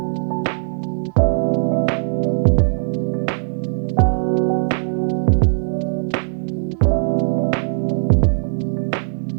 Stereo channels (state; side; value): silent; left; digital silence